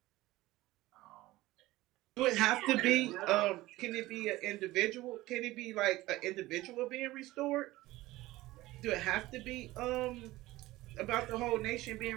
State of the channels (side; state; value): left; quieter; 18.0 dB